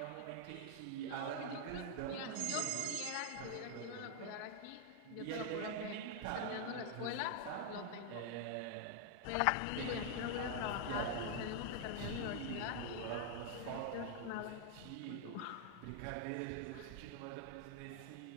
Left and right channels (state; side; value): different; both; correlation 0.00